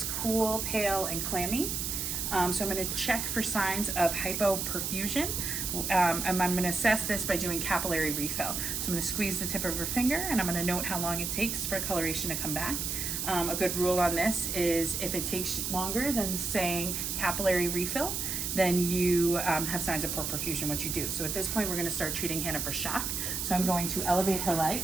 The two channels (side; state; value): right; noise; hiss, 2 dB below the sound